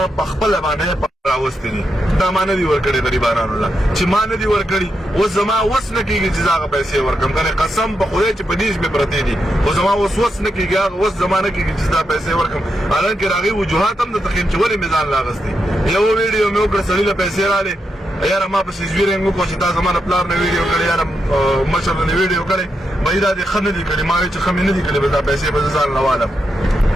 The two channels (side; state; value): both; normal; correlation 0.84